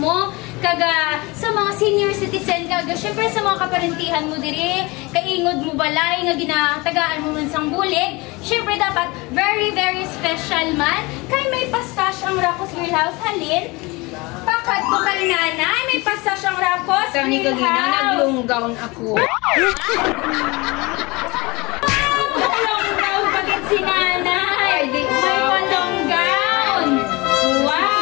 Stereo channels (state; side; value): quieter; right; 24.4 dB